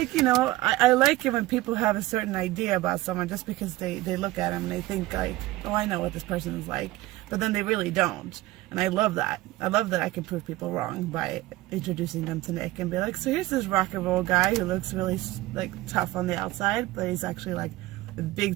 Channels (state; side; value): quieter; left; 17.9 dB